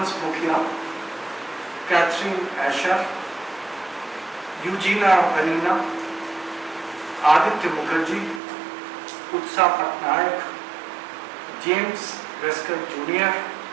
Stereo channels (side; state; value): left; drops out; at 8.4 s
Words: Mukhia, Catherine Asher, Eugenia Vanina, Aditya Mukherjee, Utsa Patnaik, James Wesker Jr.